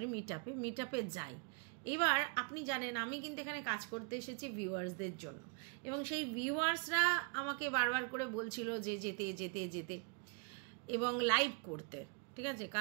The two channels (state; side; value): quieter; left; 36.7 dB